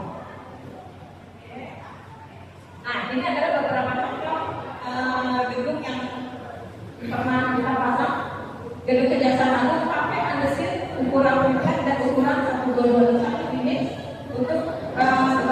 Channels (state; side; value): identical; both; correlation 1.00